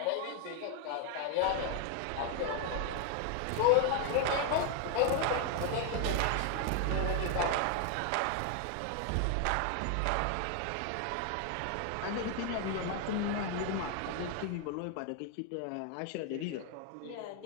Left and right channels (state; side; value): different; both; correlation 0.00